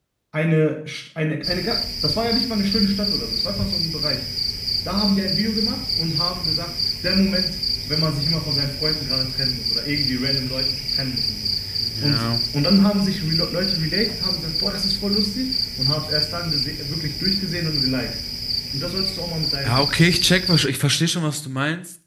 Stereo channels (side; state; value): both; identical; correlation 1.00